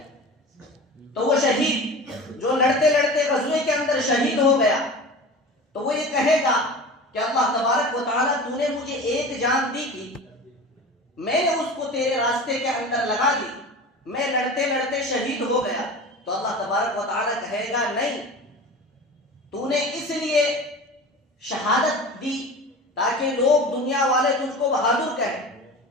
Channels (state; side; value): normal; both; correlation 0.35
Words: تو وہ شہید جو لڑتے لڑتے غزوے کے اندر شہید ہو گیا تو وہ یہ کہے گا کہ اللہ تبارک و تعالیٰ تو نے مجھے ایک جان دی تھی, میں نے اس کو تیرے راستے کے اندر لگا دی, میں لڑتے لڑتے شہید ہو گیا. تو اللہ تبارک و تعالیٰ کہے گا نہیں, تو نے اس لیے شہادت دی تاکہ لوگ دنیا والے تجھ کو بہادر کہیں,